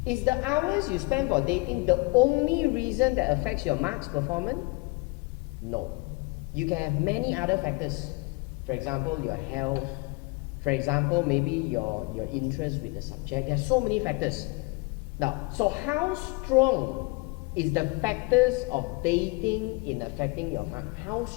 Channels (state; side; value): quieter; right; 27.5 dB